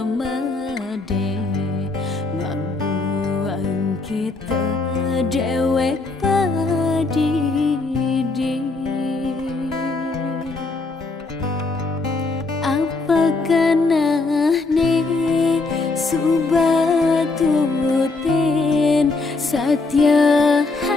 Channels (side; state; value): right; quieter; 3.6 dB